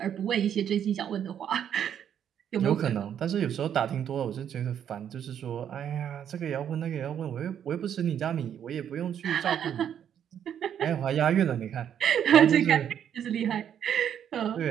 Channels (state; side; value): quieter; left; 9.2 dB